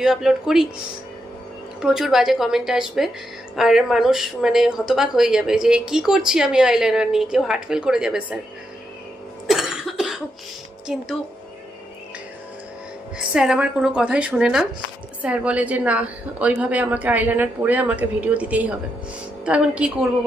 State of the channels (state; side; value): normal; both; correlation 0.82